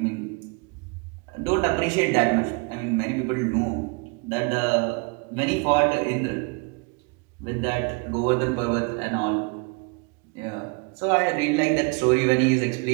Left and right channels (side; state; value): left; quieter; 31.2 dB